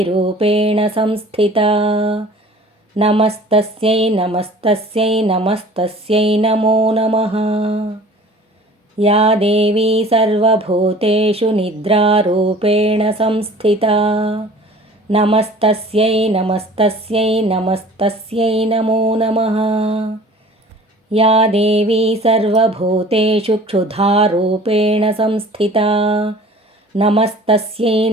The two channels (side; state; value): both; normal; correlation 0.47